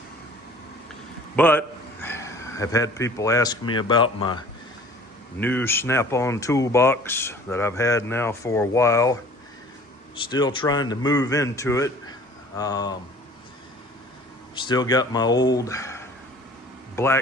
But I've had people ask me about my new Snap-on toolbox that I've had now for a while. Still trying to move into it. Still got my old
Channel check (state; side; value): normal; both; correlation 0.48